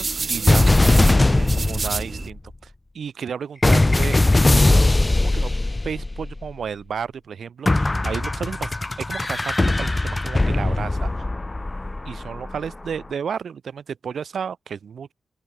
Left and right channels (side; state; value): both; normal; correlation 0.97